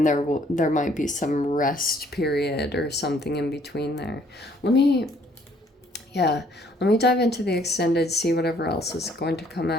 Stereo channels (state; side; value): normal; both; correlation 0.62